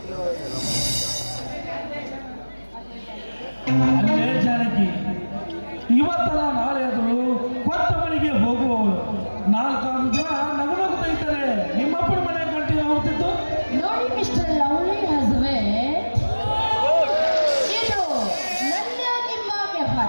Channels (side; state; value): both; inverted; correlation -1.00